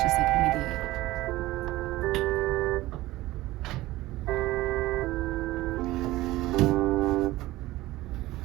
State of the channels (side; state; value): left; quieter; 17.7 dB